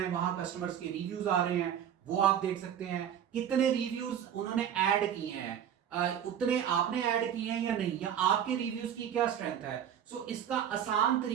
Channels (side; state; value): left; quieter; 9.4 dB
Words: वहां कस्टमर्स के रिव्यूज आ रहे हैं वो आप देख सकते हैं, कितने रिव्यूज उन्होंने ऐड किए हैं, उतने आपने ऐड किए हैं या नहीं, या आपके रिव्यूज की क्या स्ट्रेंथ है। इसका आसान